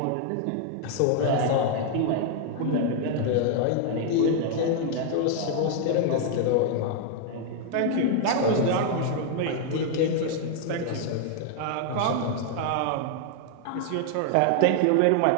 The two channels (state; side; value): different; both; correlation 0.00